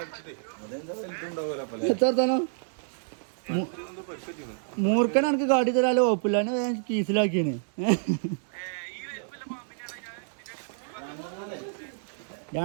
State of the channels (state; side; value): silent; left; digital silence